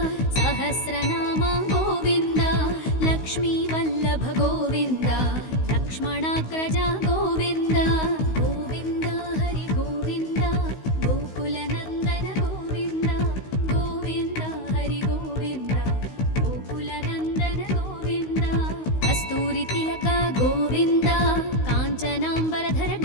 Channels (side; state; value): right; late; 16 ms